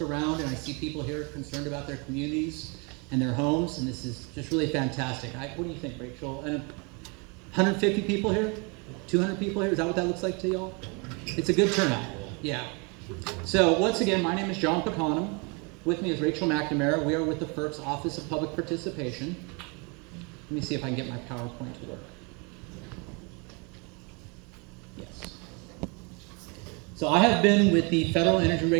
and I see people here concerned about their communities and their homes, and this is just really fantastic. What do you think, Rachel? 150 people here? 200 people here? Is that what that looks like to y'all? It's a good turnout. Yeah. So once again, my name is John Pacanum. With me is Rachel McNamara. We are with the FERC's Office of Public Participation. Let me see if I can get my PowerPoint to work. Yes. So I have been with the Federal Energy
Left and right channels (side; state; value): left; quieter; 32.0 dB